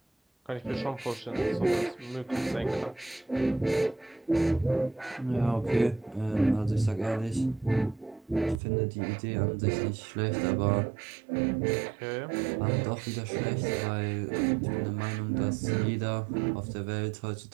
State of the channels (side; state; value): left; drops out; at 8.6 s